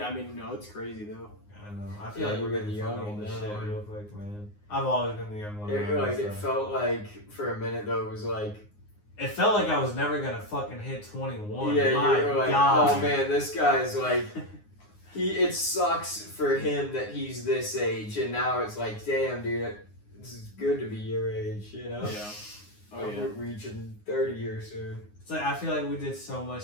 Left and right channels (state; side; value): late; right; 9.6 ms